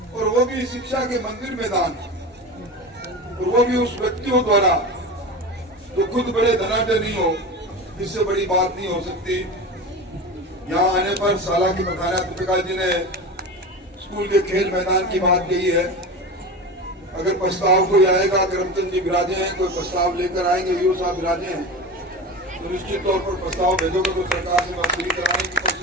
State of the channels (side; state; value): both; normal; correlation 0.28